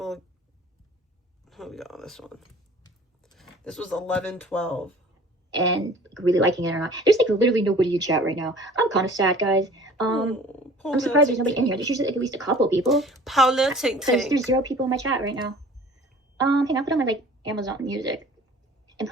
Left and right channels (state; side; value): normal; both; correlation 0.47